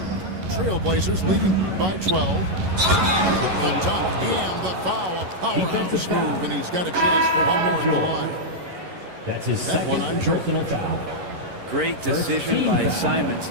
Trailblazers leading by 12. The dunk and the foul. A powerhouse move, and he's got a chance for one more at the line. That's his that one on Jordan. Great decision by Simons.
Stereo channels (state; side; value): late; left; 11 ms